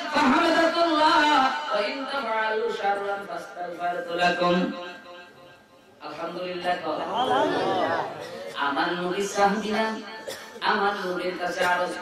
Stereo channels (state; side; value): identical; both; correlation 1.00